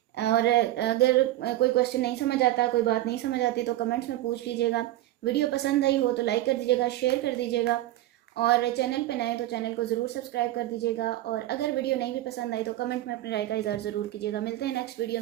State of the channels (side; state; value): left; quieter; 15.1 dB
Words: और अगर कोई क्वेश्चन नहीं समझ आता, कोई बात नहीं समझ आती तो कमेंट्स में पूछ लीजिएगा। वीडियो पसंद आई हो तो लाइक कर दीजिएगा, शेयर कर दीजिएगा, और चैनल पे नए तो चैनल को ज़रूर सब्सक्राइब कर दीजिएगा। और अगर वीडियो नहीं भी पसंद आई तो कमेंट में अपनी राय का इज़हार ज़रूर कीजिएगा। मिलते हैं नेक्स्ट वीडियो